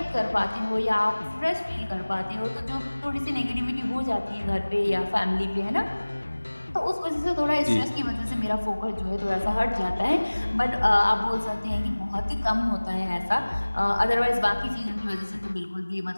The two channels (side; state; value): both; inverted; correlation -1.00